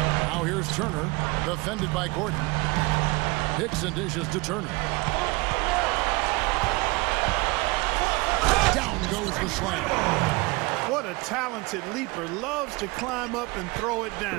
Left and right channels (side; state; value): left; quieter; 24.3 dB